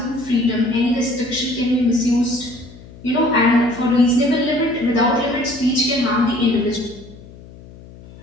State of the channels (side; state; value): left; noise; hum, 19 dB below the sound